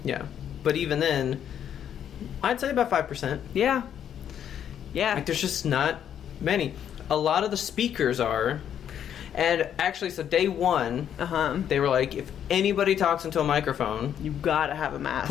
Yeah. But even then, I'd say about 5%. Yeah. Yeah. Like, there's just not many. A lot of the speakers are. And actually, so day one, they were like, if anybody talks into a microphone, you gotta have a mask.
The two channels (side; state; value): right; quieter; 9.4 dB